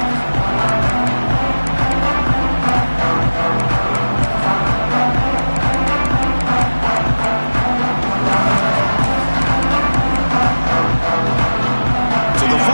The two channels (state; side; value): inverted; both; correlation -1.00